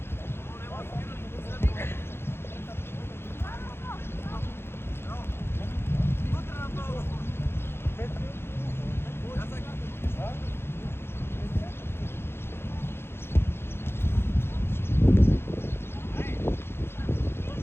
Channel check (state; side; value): late; right; 0.11 ms